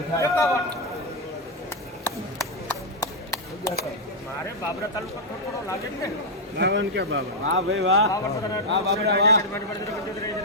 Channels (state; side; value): normal; both; correlation -0.02